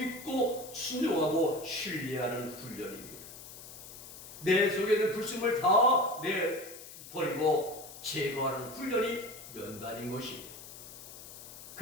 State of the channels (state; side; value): noise; left; hiss, 14 dB below the sound